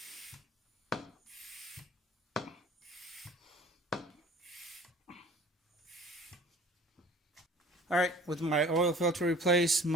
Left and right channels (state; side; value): normal; both; correlation 0.48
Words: Alright, with my oil filter replaced,